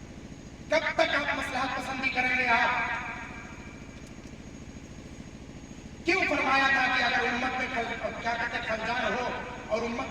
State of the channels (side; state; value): both; identical; correlation 1.00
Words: कब तक आप मसलहत पसंदी करेंगे? आप क्यों फरमाया था कि अगर उम्मत में क्या कहते खलजान हो और उम्मत